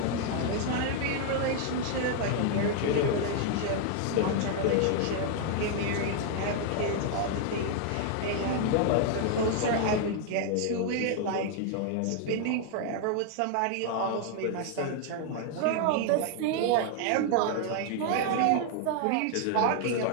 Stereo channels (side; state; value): both; different; correlation 0.00